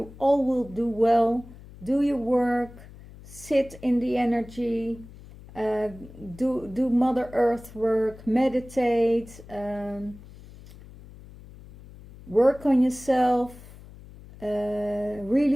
all will do well. Do your work. Sit in the energy. Do Mother Earth work. Meditate. Work on yourself.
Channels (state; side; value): noise; left; hum, 19 dB below the sound